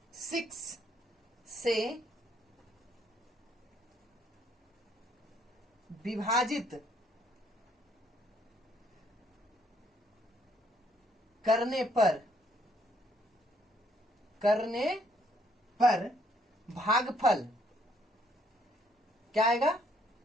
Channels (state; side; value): normal; both; correlation 0.68